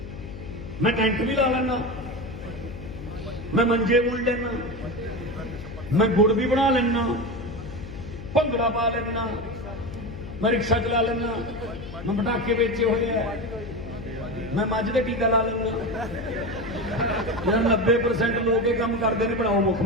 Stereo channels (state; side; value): noise; left; hum, 11 dB below the sound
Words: मैं टेंट भी ला लेना, मैं मंजे बुन लेना, मैं गुड़ भी बना लेना, भंगड़ा पा लेना, मैं रिक्शा चला लेना, मैं पटाखे बेचे हुए हैं, मैं मझ का टीका ला लेना। 90% लोग ये काम करते हैं, बनाओ